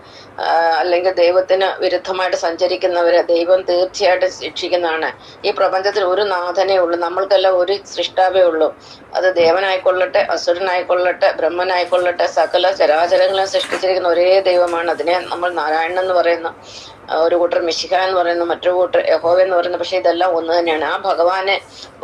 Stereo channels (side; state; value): both; identical; correlation 1.00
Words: അല്ലെങ്കിൽ ദൈവത്തിന് വിരുദ്ധമായിട്ട് സഞ്ചരിക്കുന്നവര് ദൈവം തീർച്ചയായിട്ടും ശിക്ഷിക്കുന്നതാണ്. ഈ പ്രപഞ്ചത്തിൽ ഒരു നാഥനേ ഉള്ളൂ, നമ്മൾക്കെല്ലാം ഒരു സൃഷ്ടാവേ ഉള്ളൂ. അത് ദേവനായിക്കൊള്ളട്ടെ, അസുരനായിക്കൊള്ളട്ടെ, ബ്രഹ്മനായിക്കൊള്ളട്ടെ, സകല ചരാചരങ്ങളെ സൃഷ്ടിച്ചിരിക്കുന്ന ഒരേ ദൈവമാണ്. അതിനെ നമ്മൾ നാരായണൻ എന്ന് പറയുന്നു, ഒരു കൂട്ടർ മിശിഹ എന്ന് പറയുന്നു, മറ്റൊരു കൂട്ടർ യഹോവ എന്ന് പറയുന്നു. പക്ഷെ ഇതെല്ലാം ഒന്ന് തന്നെയാണ്. ആ ഭഗവാനെ